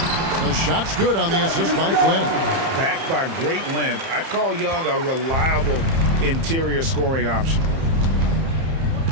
The shot's good on the assist by Flynn. Backed by great length, I'd call Young a reliable interior scoring option.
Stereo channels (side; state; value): left; late; 30 ms